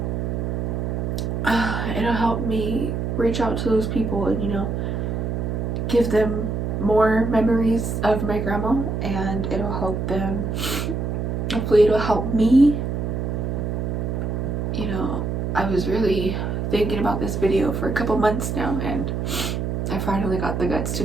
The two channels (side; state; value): right; noise; hum, 1 dB below the sound